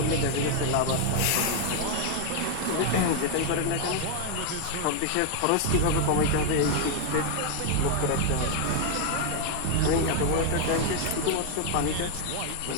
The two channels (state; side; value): different; both; correlation 0.00